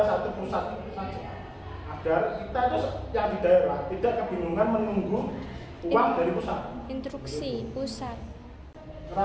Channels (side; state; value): both; identical; correlation 1.00